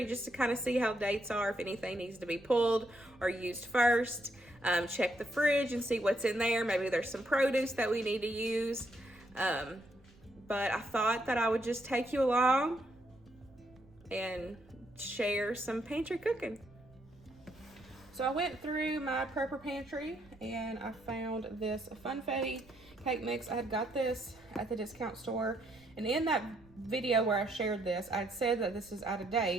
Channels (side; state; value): right; noise; rumble, 26 dB below the sound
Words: just to kind of see how dates are, if anything needs to be pulled or used first. Check the fridge and see what's in there. Maybe there's some produce that we need to use. But I thought that I would just take you along and share some pantry cooking. So I went through my prepper pantry and I found this funfetti cake mix. I had got this at the discount store, and in that video where I shared this, I'd said that this is out of